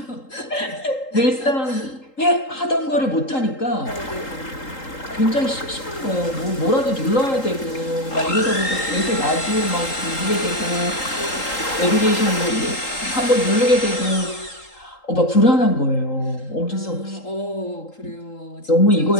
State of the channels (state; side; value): late; right; 3.8 ms